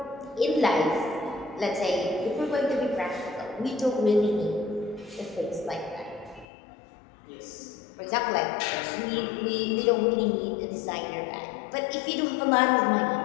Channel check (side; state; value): right; drops out; at 6.5 s